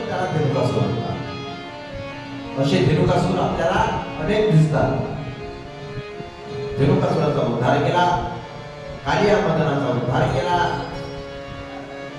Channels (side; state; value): both; identical; correlation 1.00